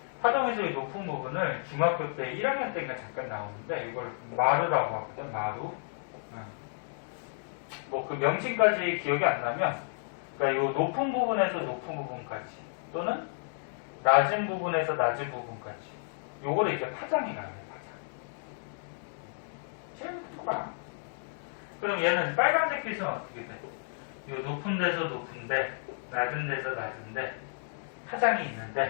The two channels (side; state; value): right; silent; digital silence